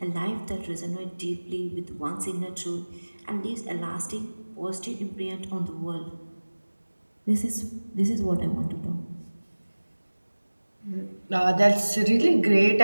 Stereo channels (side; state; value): both; inverted; correlation -1.00